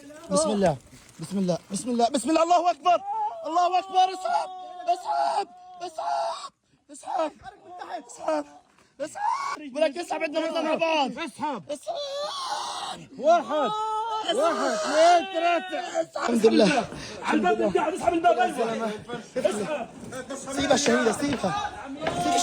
بسم الله بسم الله بسم الله بسم الله. الله أكبر الله أكبر. اسحب اسحب اسحب اسحب اسحب اسحب. ولك اسحب. عندنا نطلع مع بعض. اسحب اسحب. 1 2 3. الحمد لله. على الباب قاعد اسحب الباب. ايوه سيبها الشهيدة سيبها. سيب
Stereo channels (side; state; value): both; identical; correlation 1.00